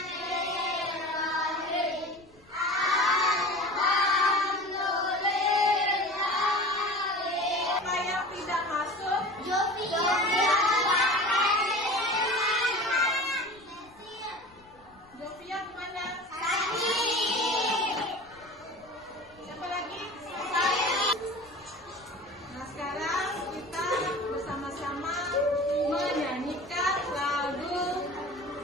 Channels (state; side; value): noise; left; rumble, 28 dB below the sound